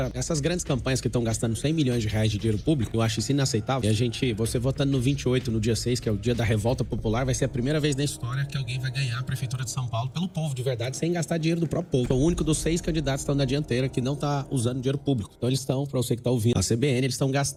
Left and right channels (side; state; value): both; identical; correlation 1.00